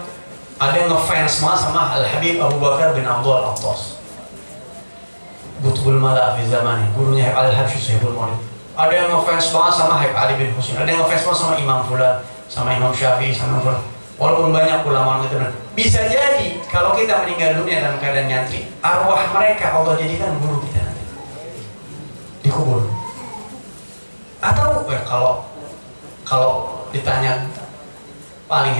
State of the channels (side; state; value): both; inverted; correlation -1.00